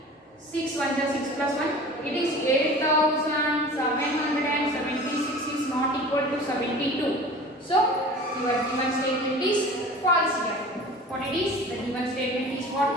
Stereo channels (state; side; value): normal; both; correlation 0.40